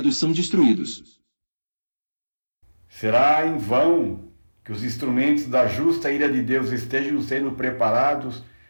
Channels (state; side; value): inverted; both; correlation -1.00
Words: são destruídos. Será em vão que os instrumentos da justa ira de Deus estejam sendo preparados